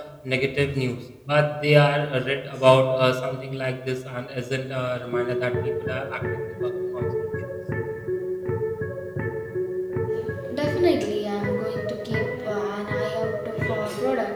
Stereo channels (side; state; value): both; identical; correlation 1.00